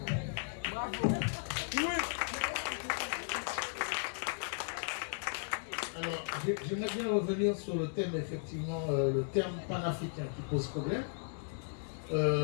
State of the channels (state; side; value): silent; right; digital silence